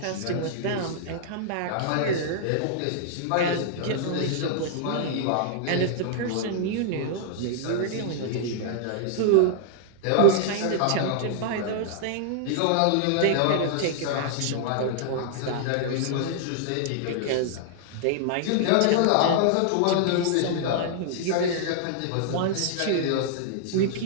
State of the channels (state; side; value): different; both; correlation -0.01